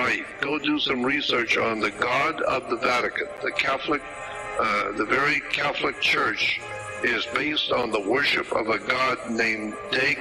go do some research on the God of the Vatican, the Catholic, the very Catholic Church is based on the worship of a god named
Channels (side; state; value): both; identical; correlation 1.00